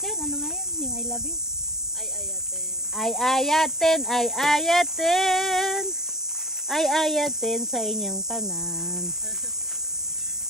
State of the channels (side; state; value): both; normal; correlation 0.36